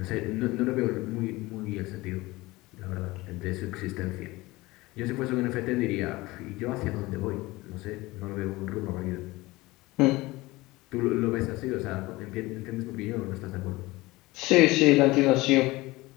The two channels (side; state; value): right; quieter; 20.6 dB